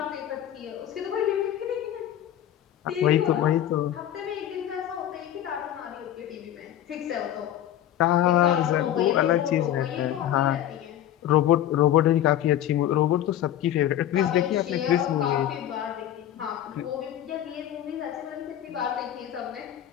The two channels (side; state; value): right; quieter; 11.6 dB